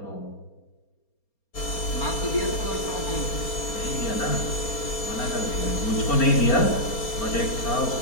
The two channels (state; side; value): late; right; 4.3 ms